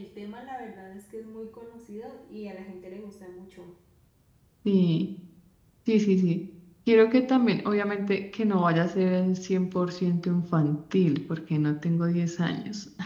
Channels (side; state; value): both; identical; correlation 1.00